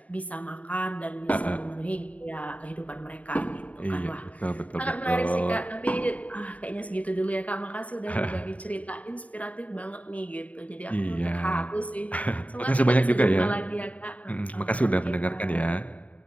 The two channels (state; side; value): late; right; 0.069 ms